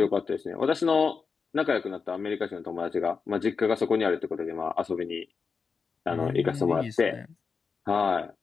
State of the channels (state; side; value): quieter; right; 5.3 dB